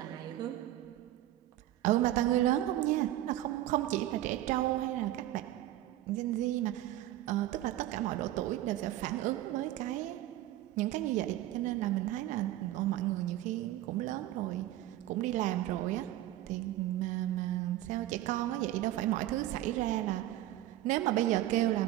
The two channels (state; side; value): quieter; left; 14.4 dB